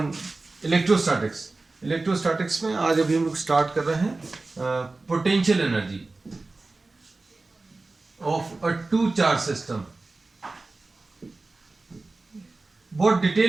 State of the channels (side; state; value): left; quieter; 3.4 dB